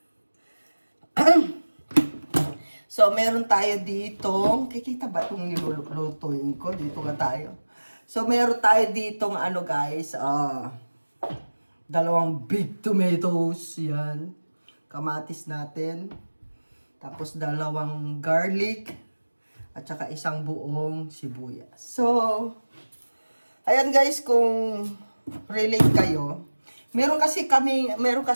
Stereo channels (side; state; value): both; inverted; correlation -1.00